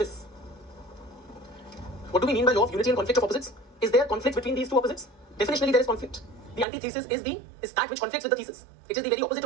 What do we mean by law of unity and conflict of opposites? Is there conflict between these two opposites? Definitionally, there is conflict. The antithesis is that which conflicts with the thesis. It is the very opposite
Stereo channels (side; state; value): left; drops out; at 6.7 s